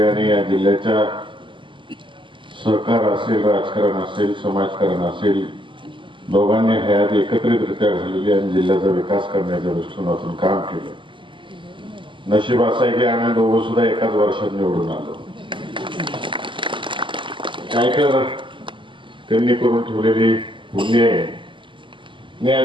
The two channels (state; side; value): late; left; 0.24 ms